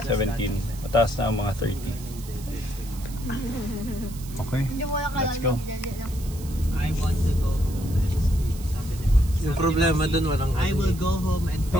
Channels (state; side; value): noise; right; hiss, 17 dB below the sound